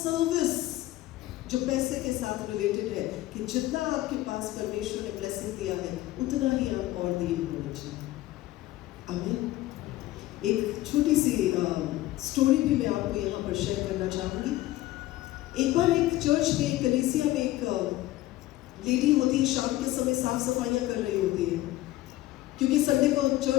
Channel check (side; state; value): right; quieter; 16.3 dB